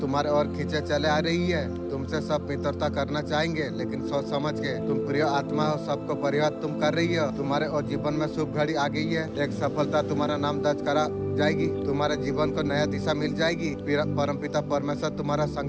और खींचे चले आ रही है। तुमसे सब मित्रता करना चाहेंगे, लेकिन सोच समझ के। तुम प्रिय आत्मा हो, सबको परिवार तुम कर रही हो। तुम्हारे और जीवन में शुभ घड़ी आ गई है। एक सफलता तुम्हारा नाम दर्ज करा जाएगी। तुम्हारे जीवन को नया दिशा मिल जाएगी। परमपिता परमेश्वर तुम्हारा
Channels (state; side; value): identical; both; correlation 1.00